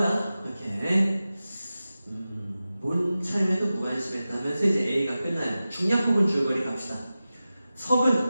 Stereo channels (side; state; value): both; inverted; correlation -0.95